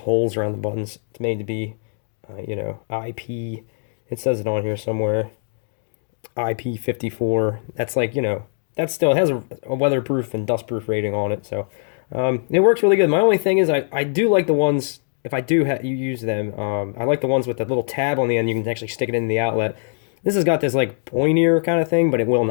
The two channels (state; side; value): silent; right; digital silence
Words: around the buttons. It's made to be, IP. It says it on here somewhere. IP54. That's like, that still has a weatherproof and dustproof rating on it, so it works really good. My only thing is I do like the ones, if I do you use them, I like the ones with the little tab on the end. You can actually stick it in the outlet. This has got this like pointier kind of thing, but it will